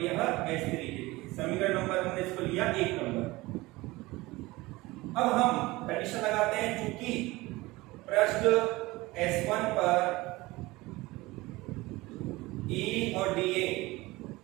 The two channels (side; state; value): left; quieter; 20.6 dB